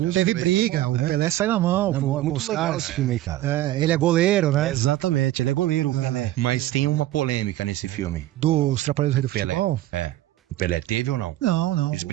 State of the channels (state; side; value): quieter; left; 14.9 dB